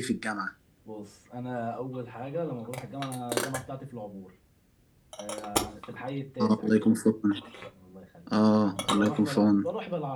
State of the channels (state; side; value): identical; both; correlation 1.00